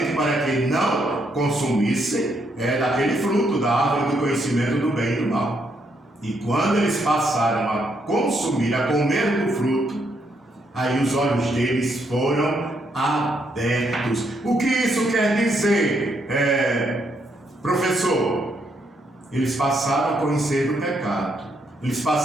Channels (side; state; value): both; normal; correlation 0.75